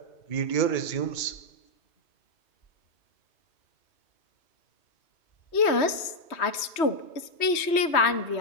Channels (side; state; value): right; late; 3.1 ms